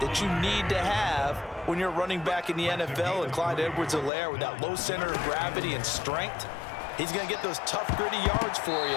you need to have when you're running back in the NFL. And Clyde Edwards-Helaire, with that low center of gravity and strength, he's going to get those tough, gritty yards for you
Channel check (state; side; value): drops out; right; at 4.1 s